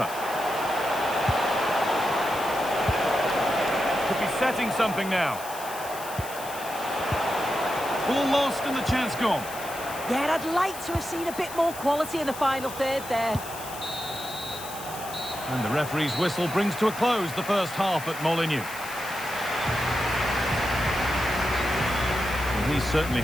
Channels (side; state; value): left; noise; hiss, 13 dB below the sound